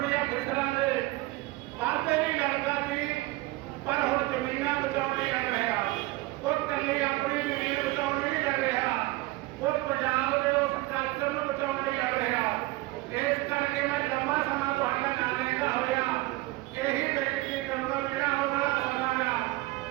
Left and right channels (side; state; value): left; quieter; 19.9 dB